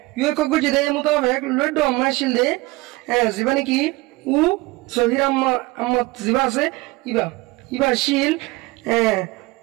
ইউএ কগু জেদে মোতাবেক লড আম্মা আসিল দে জীবনে কি উ সহির আম্মা জিবা আছে ইবা শিল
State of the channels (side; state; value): left; quieter; 22.1 dB